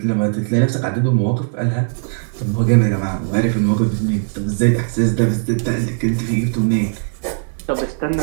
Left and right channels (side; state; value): left; silent; 66 dB below the other